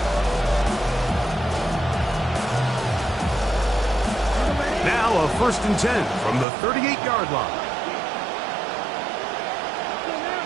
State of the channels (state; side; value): drops out; left; at 6.5 s